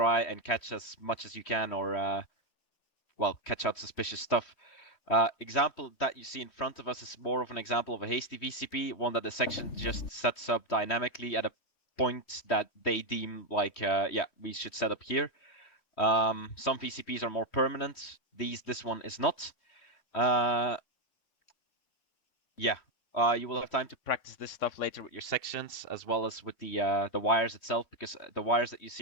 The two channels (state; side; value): late; right; 3.1 ms